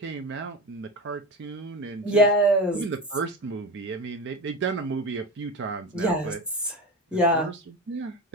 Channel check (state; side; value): normal; both; correlation 0.25